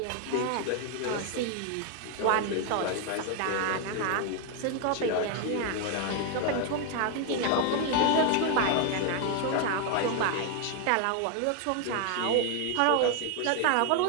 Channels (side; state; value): both; different; correlation 0.01